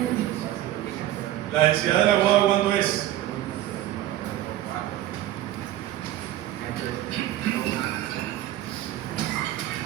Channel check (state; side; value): quieter; left; 13.7 dB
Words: La densidad del agua, ¿cuánto es?